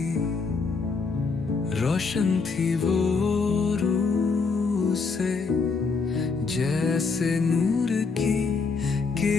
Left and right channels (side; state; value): right; quieter; 4.6 dB